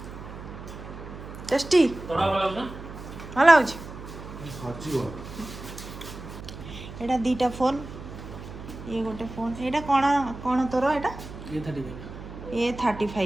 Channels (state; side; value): noise; right; hum, 12 dB below the sound